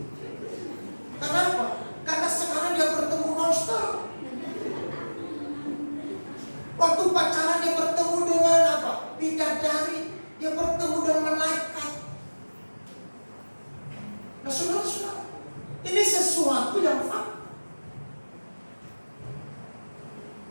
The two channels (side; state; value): both; inverted; correlation -1.00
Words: Kenapa? Karena sekarang dia bertemu monster. Waktu pacaran dia bertemu dengan apa? Bidadari. Dia bertemu dengan malaikat. Nah, saudara-saudara, ini sesuatu yang fakta.